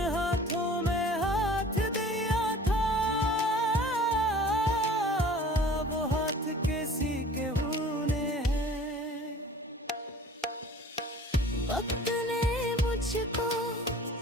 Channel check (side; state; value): both; normal; correlation 0.47